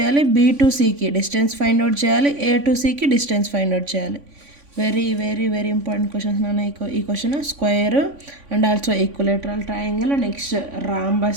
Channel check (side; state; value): left; late; 3.5 ms